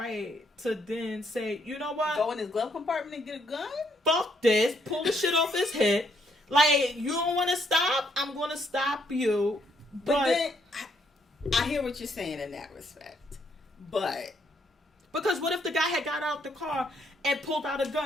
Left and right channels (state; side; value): normal; both; correlation 0.72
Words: to then say, you know what? Go in his glove compartment and get a gun? Fuck this. Pull the shit off his head. Like, you don't want to stop? I'm going to stop you. But then, I hear what you're saying in that respect. But... Because what if the guy had got out the car and pulled out a